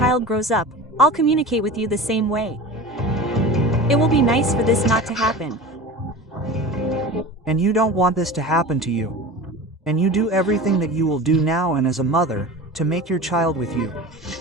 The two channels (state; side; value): normal; both; correlation 0.33